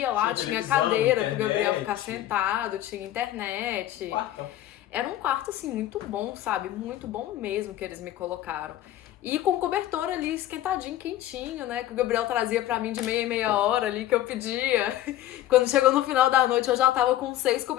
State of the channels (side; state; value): right; quieter; 13.5 dB